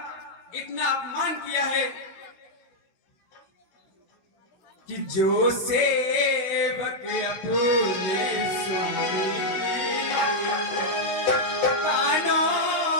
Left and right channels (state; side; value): late; right; 16 ms